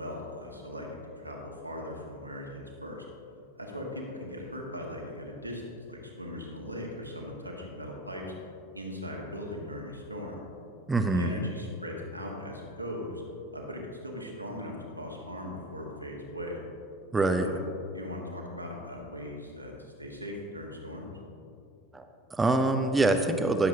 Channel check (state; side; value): normal; both; correlation 0.44